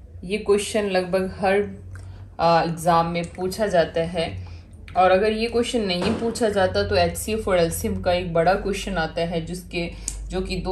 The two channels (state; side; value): identical; both; correlation 1.00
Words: लगभग हर एग्ज़ाम में पूछा जाता है। और अगर ये क्वेश्चन नहीं पूछा जाता तो HCF और LCM का एक बड़ा क्वेश्चन आता है, जो कि